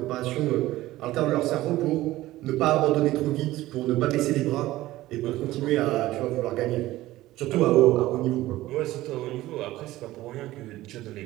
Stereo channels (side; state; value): left; quieter; 16.5 dB